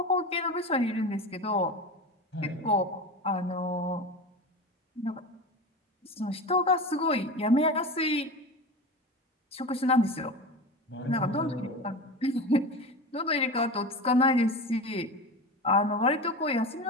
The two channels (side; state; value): both; normal; correlation 0.28